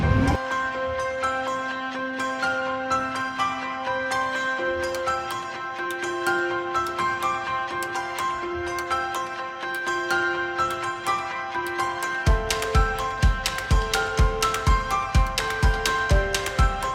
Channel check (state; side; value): identical; both; correlation 1.00